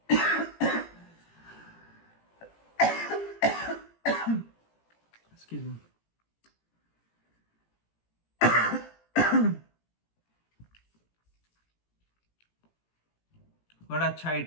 एक्सक्यूज मी, बड़ा अच्छा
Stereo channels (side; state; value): right; late; 18 ms